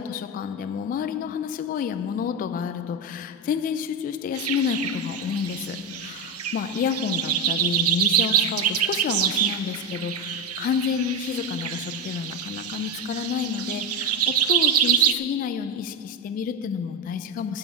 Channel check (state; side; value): normal; both; correlation 0.11